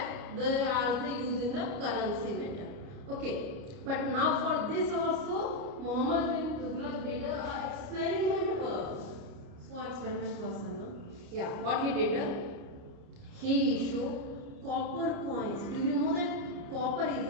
they are used in the currency matter. Okay, but now for this also Muhammad bin Tughlaq did a experiment work. So experiment person, no? Yeah, what he did? He issued copper coins. Do you know that copper is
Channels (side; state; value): left; late; 29 ms